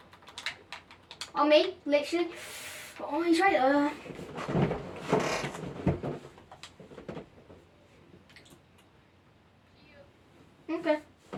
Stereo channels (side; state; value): both; identical; correlation 1.00